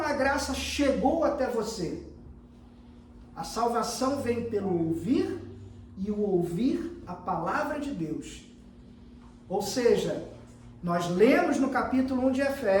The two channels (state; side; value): identical; both; correlation 1.00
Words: a graça chegou até você. A salvação vem pelo ouvir e o ouvir a palavra de Deus. Ou seja, nós lemos no capítulo 1 de